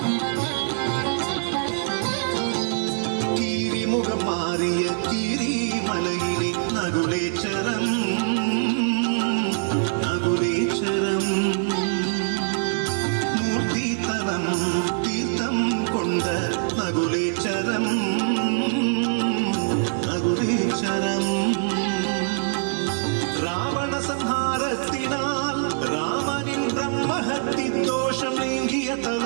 கீரிமுகம் மாறிய கீரிமலையிலே நகுலேச்சரம். நகுலேச்சரம் மூர்த்தி தலம் தீர்த்தம் கொண்ட நகுலேச்சரம். நகுலேச்சரம் ராவண சம்ஹாரத்தினால் ராமனின் பிரம்மஹத்தி தோஷம் நீங்கிய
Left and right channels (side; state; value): left; silent; digital silence